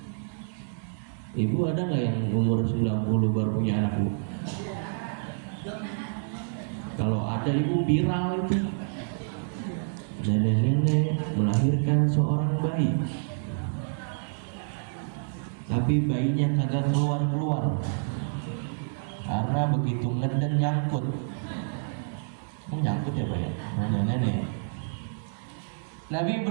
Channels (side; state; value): left; silent; digital silence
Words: Ibu ada nggak yang umur 90 baru punya anak, Bu? Kalau ada ibu viral itu, nenek-nenek melahirkan seorang bayi, tapi bayinya kagak keluar-keluar karena begitu ngeden nyangkut. Nyangkut ya Pak ya, nenek-nenek. Nabi